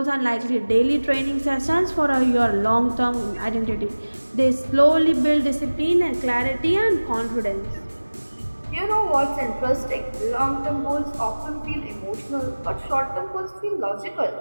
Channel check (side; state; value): both; inverted; correlation -1.00